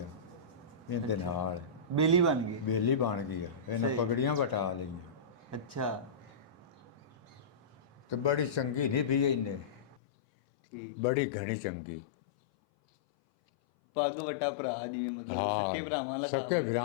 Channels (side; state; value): right; drops out; at 10.0 s